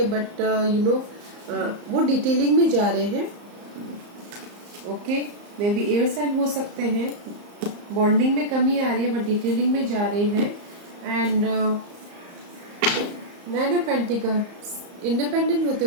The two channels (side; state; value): left; late; 34 ms